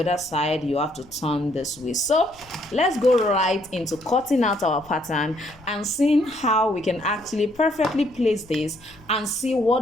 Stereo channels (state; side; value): noise; left; rumble, 25 dB below the sound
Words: side you have to turn this way. So let's go right into cutting out our pattern and seeing how we can actually perfectly place this and see